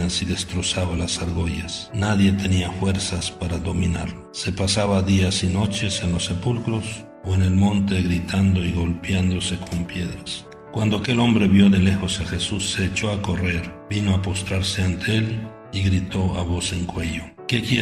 y destrozaba las argollas. Nadie tenía fuerzas para dominarlo. Se pasaba días y noches en los sepulcros o en el monte gritando y golpeándose con piedras. Cuando aquel hombre vio de lejos a Jesús, se echó a correr, vino a postrarse ante él y gritó a voz en cuello: ¿Qué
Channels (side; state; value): both; identical; correlation 1.00